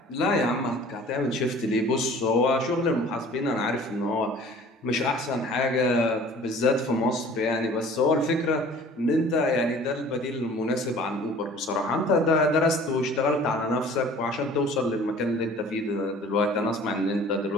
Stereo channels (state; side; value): normal; both; correlation 0.48